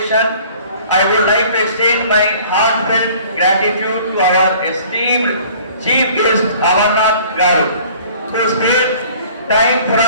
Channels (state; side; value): inverted; both; correlation -0.52